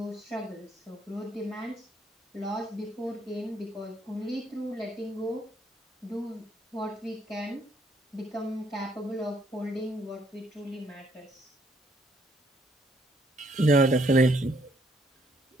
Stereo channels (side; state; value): both; normal; correlation 0.68